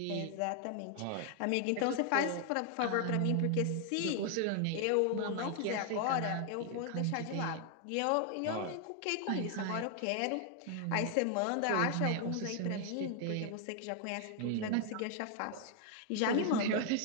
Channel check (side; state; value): both; different; correlation 0.00